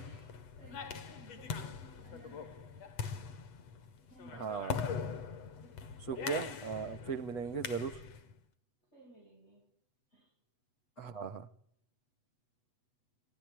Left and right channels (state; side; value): late; right; 8.1 ms